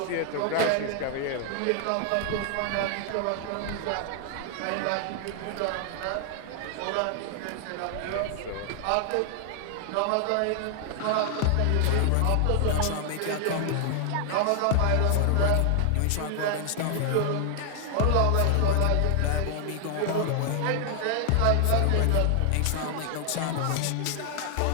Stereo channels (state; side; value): different; both; correlation 0.00